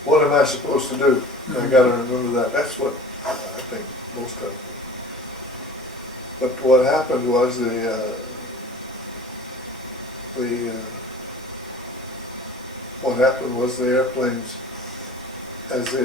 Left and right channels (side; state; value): both; normal; correlation 0.43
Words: am I supposed to do? I gotta remember that. That's what I think most of them. But what happened was what happened was the airplanes,